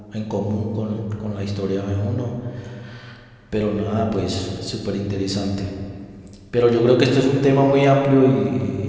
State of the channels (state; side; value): identical; both; correlation 1.00